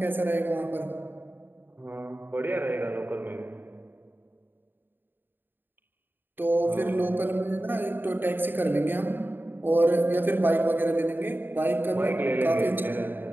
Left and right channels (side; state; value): left; late; 0.095 ms